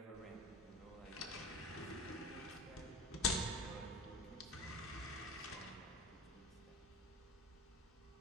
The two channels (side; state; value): both; normal; correlation 0.34